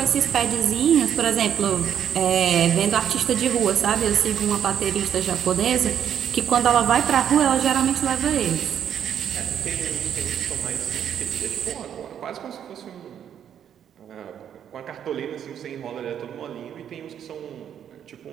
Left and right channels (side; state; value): left; quieter; 9.2 dB